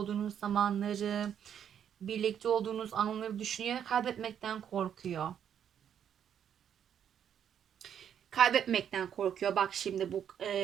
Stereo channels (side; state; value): left; quieter; 8.9 dB